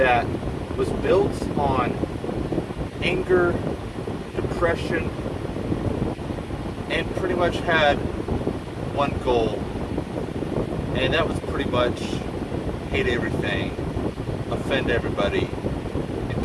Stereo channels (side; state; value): both; identical; correlation 1.00